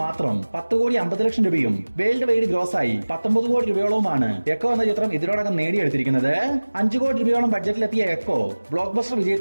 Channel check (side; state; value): both; inverted; correlation -1.00